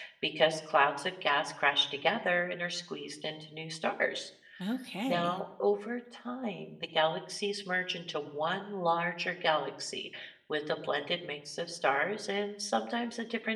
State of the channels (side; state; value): both; identical; correlation 1.00